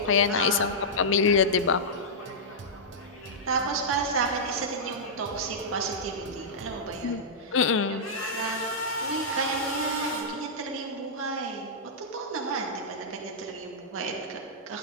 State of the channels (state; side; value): normal; both; correlation -0.12